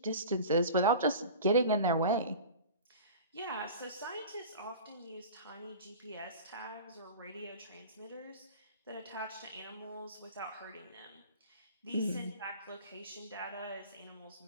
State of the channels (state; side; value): inverted; both; correlation -0.37